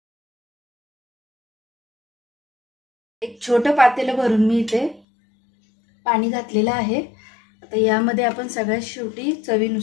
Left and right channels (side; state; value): right; drops out; at 5.0 s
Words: एक छोटं पातेलं भरून मी इथे पाणी घातलेलं आहे। आता यामध्ये आपण सगळ्यात शेवटी